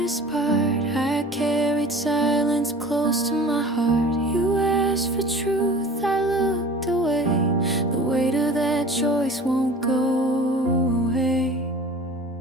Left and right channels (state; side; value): normal; both; correlation 0.42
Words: part. I carried silence close to my heart. You asked for truth, I looked away. The weight of that choice won't go away.